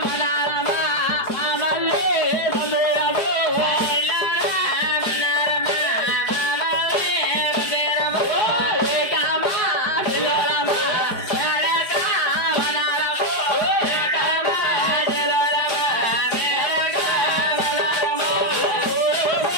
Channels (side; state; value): right; late; 4.9 ms